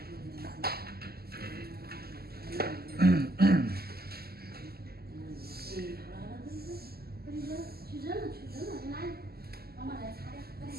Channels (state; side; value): late; left; 0.45 ms